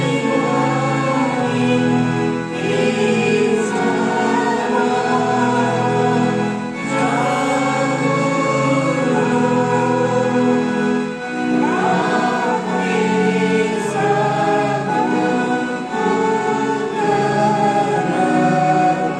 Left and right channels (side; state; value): both; identical; correlation 1.00